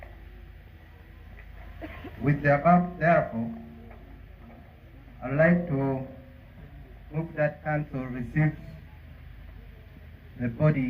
With the above, therefore, I'd like to move that council receives the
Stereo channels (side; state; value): both; identical; correlation 1.00